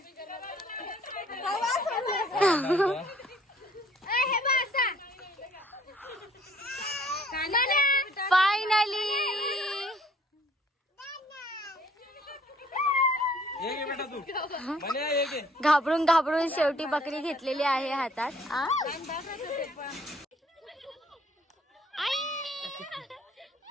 हे बघ असा. फायनली ये घे बेटा तू. म्हणे ये घे. घाबरून घाबरून शेवटी बकरी घेतलेली आहे हातात.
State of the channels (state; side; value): normal; both; correlation 0.59